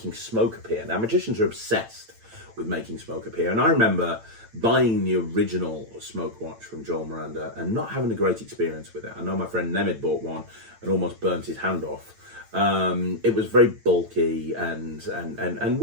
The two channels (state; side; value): late; left; 8.9 ms